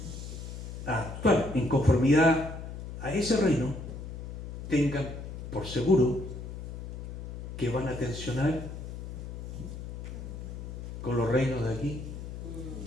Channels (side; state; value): left; noise; hum, 8 dB below the sound